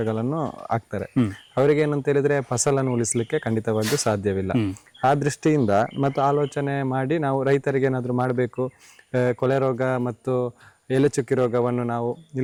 ಹಾಕ್ತಾರೆ. ಅವರಿಗೆ ಏನಂತ ಹೇಳಿದ್ರೆ ಫಸಲನ್ನು ಉಳಿಸ್ಲಿಕ್ಕೆ ಖಂಡಿತವಾಗಿಯೂ ಸಾಧ್ಯವಿಲ್ಲ. ಆ ದೃಷ್ಟಿಯಿಂದ ಮತ್ತು ಆಲೋಚನೆ ಮಾಡಿ ನಾವು ರೈತರಿಗೆ ಏನಾದ್ರು ಮಾಡಬೇಕು, ಕೊಳೆ ರೋಗ ಮತ್ತು ಎಲೆ ಚುಕ್ಕಿ ರೋಗವನ್ನು ನಾವು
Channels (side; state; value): both; identical; correlation 1.00